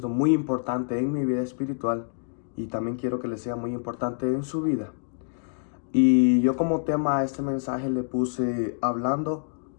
muy importante en mi vida espiritual y también quiero que le sea muy importante en su vida. Y yo como tema a este mensaje le puse hablando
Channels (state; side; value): silent; right; digital silence